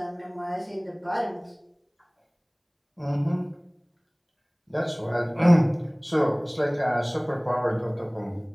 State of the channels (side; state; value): both; identical; correlation 1.00